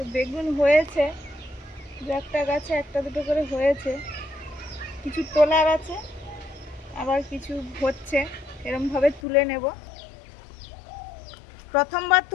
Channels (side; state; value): right; drops out; at 9.2 s